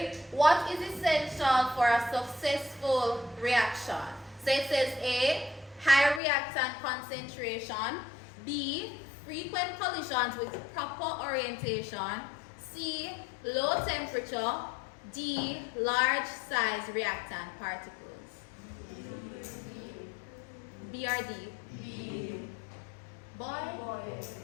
what is essential for a successful reaction? So it says A, high reactant concentration, B, frequent collisions with proper orientation, C, low temperature, D, large size reactant particles. B or D? B. Boy?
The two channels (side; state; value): right; drops out; at 6.2 s